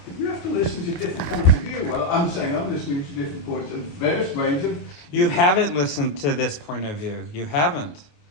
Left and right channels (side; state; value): right; late; 28 ms